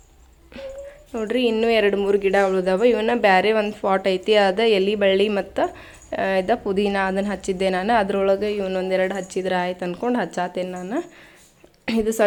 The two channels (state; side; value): identical; both; correlation 1.00